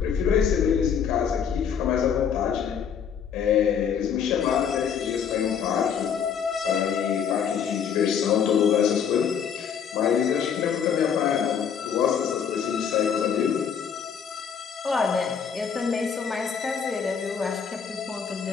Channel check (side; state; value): right; quieter; 7.4 dB